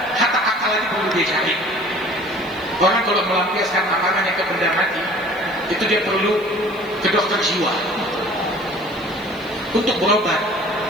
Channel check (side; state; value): right; noise; hiss, 26 dB below the sound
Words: hatta akal ini perlu dicari. Orang kalau melampiaskan akalnya ke benda mati, itu dia perlu ke dokter jiwa untuk berobat.